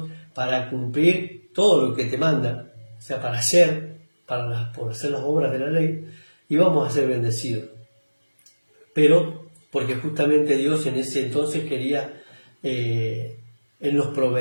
para cumplir todo lo que te manda, o sea, por hacer las obras de la ley, y vamos a ser bendecidos. Pero porque justamente Dios en ese entonces quería, Él nos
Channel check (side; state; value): both; inverted; correlation -1.00